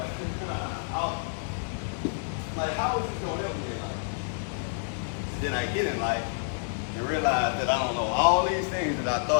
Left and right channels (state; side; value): silent; right; 59 dB below the other